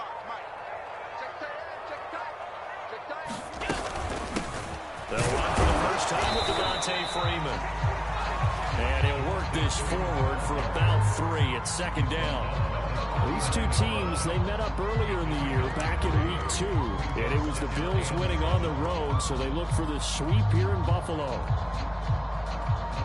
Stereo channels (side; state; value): both; identical; correlation 1.00